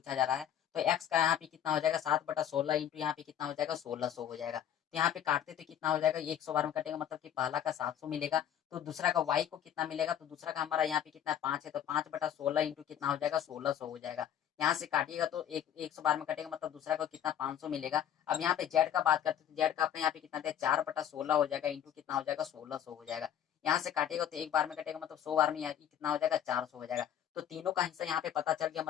जा रहा है, तो एक्स का यहाँ पे कितना हो जाएगा, 7/16 इंटू यहाँ पे कितना हो जाएगा, 1600 हो जाएगा। तो यहाँ पे काटते तो कितना हो जाएगा, 100 बार में कटेगा, मतलब कि पहला का 700 मिलेगा, तो दूसरा का वाई को कितना मिलेगा, तो दूसरा का हमारा यहाँ पे कितना 5 है, तो 5/16 इंटू कितना हो जाएगा, 1600 हो जाएगा। यहाँ से काटिएगा तो 100 बार में कटेगा, मतलब दूसरा को कितना 500 मिलेगा। अब यहाँ पे जेड का बात करते हैं, तो जेड का अपने यहाँ पे कितना दिया, 4/16 हो जाएगा इंटू कितना हो जाएगा, 1600 हो जाएगा। यहाँ से काटेगा तो एक बार में कटेगा, मतलब 100 बार में कितना हो जाएगा, 400 हो जाएगा। तो तीनों का हिस्सा यहाँ पे पता चल गया,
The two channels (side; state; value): right; quieter; 9.9 dB